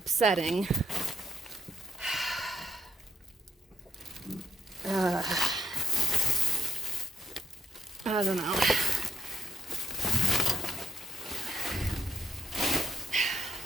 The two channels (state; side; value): normal; both; correlation 0.73